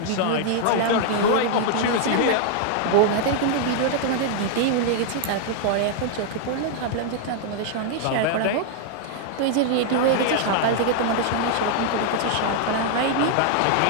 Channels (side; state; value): both; different; correlation -0.01